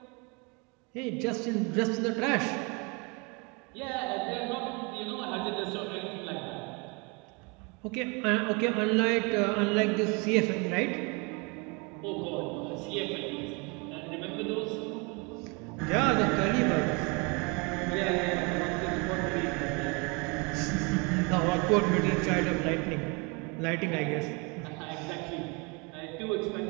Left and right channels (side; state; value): left; quieter; 30.3 dB